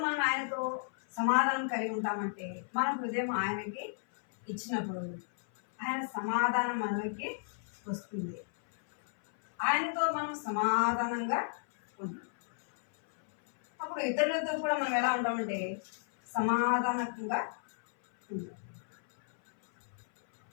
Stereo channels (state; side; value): silent; right; 56 dB below the other